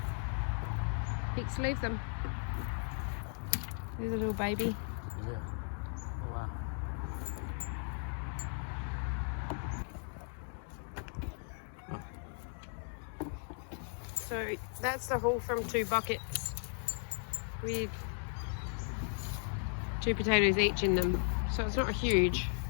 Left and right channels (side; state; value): right; silent; 53 dB below the other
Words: Pix, leave them. There's a little baby. Yeah. Oh, wow. So that's the haul from 2 buckets with 2 potatoes each in them. So it's not huge,